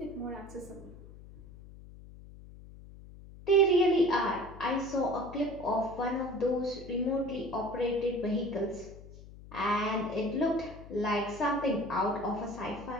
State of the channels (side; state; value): left; noise; hum, 17 dB below the sound